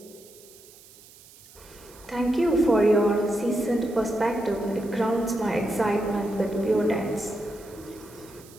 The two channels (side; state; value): right; noise; hiss, 23 dB below the sound